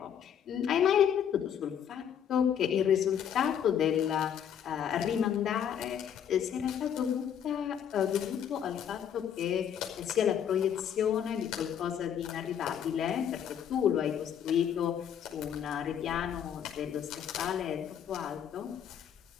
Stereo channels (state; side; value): quieter; right; 8.8 dB